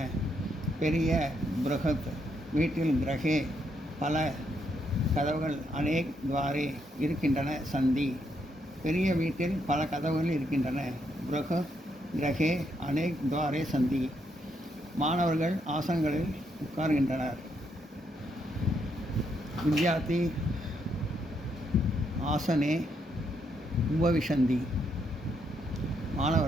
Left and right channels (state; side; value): normal; both; correlation 0.77